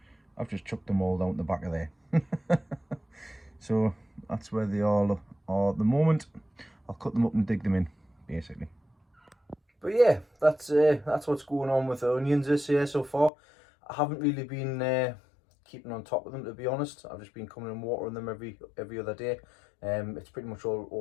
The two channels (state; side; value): drops out; right; at 13.3 s